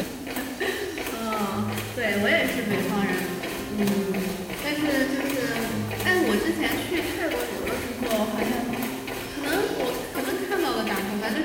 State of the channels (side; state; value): both; identical; correlation 1.00